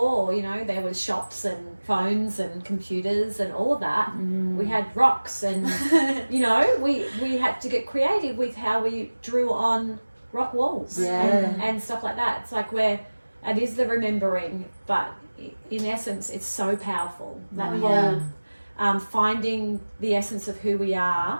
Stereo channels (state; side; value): inverted; both; correlation -1.00